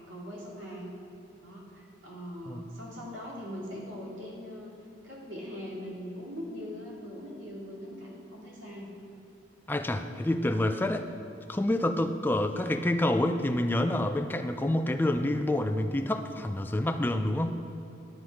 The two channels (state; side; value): normal; both; correlation 0.84